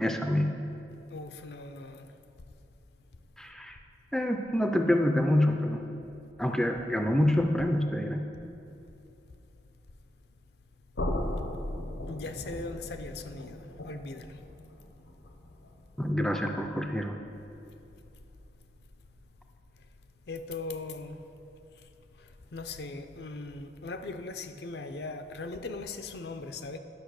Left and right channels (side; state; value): both; normal; correlation 0.86